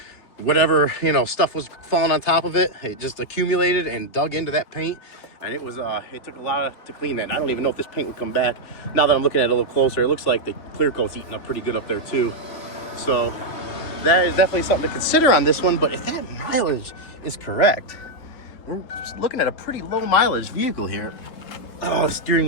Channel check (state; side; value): late; right; 3.4 ms